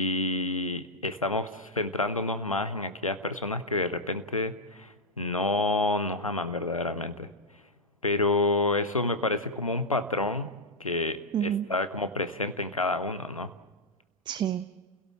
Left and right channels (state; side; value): normal; both; correlation -0.04